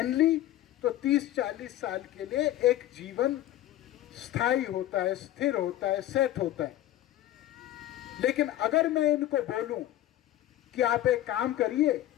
ली तो 30-40 साल के लिए एक जीवन स्थायी होता है, स्थिर होता है, सेट होता है। लेकिन अगर मैं इनको बोलूं कि आप एक काम करिए,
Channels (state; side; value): quieter; right; 13.6 dB